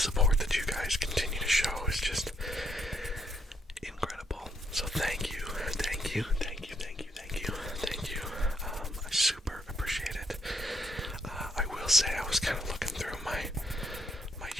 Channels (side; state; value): both; normal; correlation 0.74